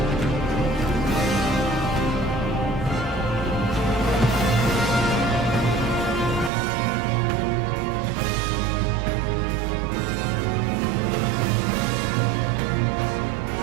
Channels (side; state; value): left; drops out; at 6.5 s